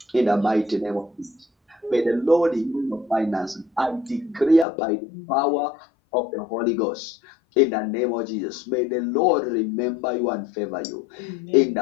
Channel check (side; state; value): right; drops out; at 4.7 s